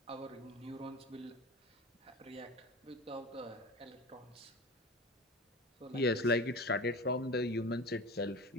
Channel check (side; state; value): both; normal; correlation 0.32